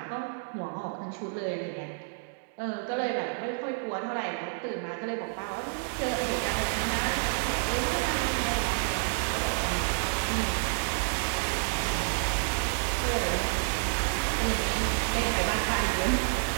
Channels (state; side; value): silent; left; digital silence